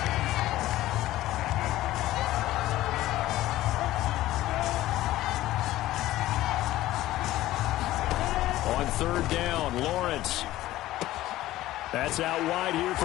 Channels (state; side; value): quieter; right; 15.6 dB